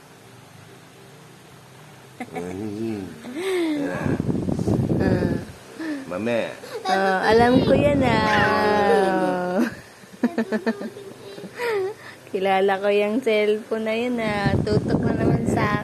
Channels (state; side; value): identical; both; correlation 1.00